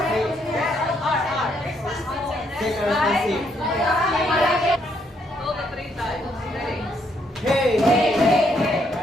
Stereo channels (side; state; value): both; normal; correlation 0.72